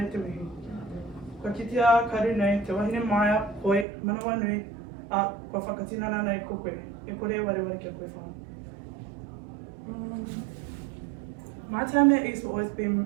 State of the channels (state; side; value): drops out; left; at 3.9 s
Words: te mihi. Kua kitea karu nei, te wahine maia, koe, manawa nui, kua whakatinana nei ko koe. E kore wareware kia koe whā. My time at East will always be